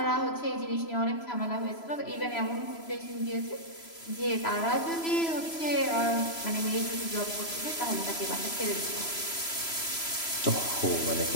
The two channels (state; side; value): late; right; 3.0 ms